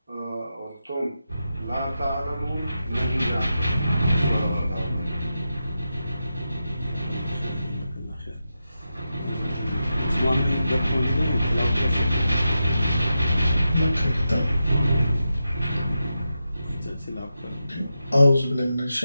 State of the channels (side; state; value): both; inverted; correlation -0.89